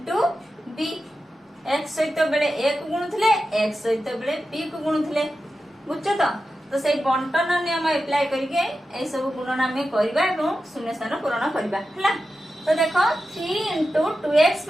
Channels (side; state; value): both; normal; correlation 0.91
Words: b x सहित बेले a को गुणुथिले x सहित बेले b को गुणुथिले बुझছো तो से बंटन नियम अप्लाई करके ए सब गुणन हमें करबा एवं शून्य स्थान पूरण करबा हला। तो देखो 3 into 2x